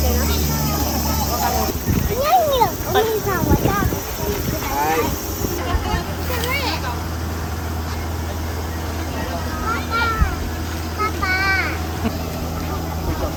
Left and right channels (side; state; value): both; identical; correlation 1.00